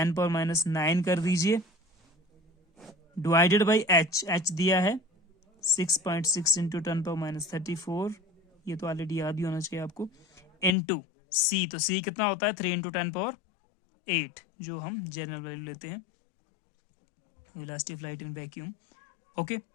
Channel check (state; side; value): drops out; right; at 10.7 s